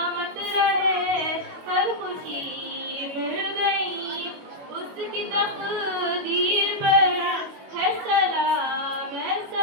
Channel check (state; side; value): late; left; 21 ms